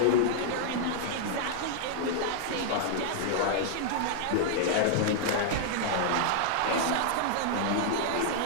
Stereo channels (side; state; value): both; different; correlation -0.01